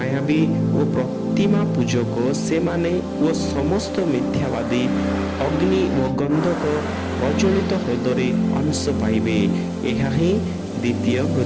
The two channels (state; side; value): identical; both; correlation 1.00